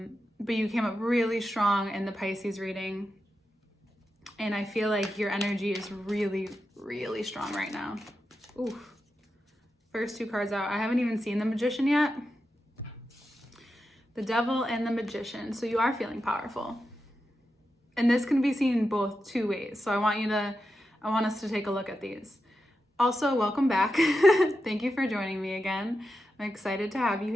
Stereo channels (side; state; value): both; normal; correlation 0.89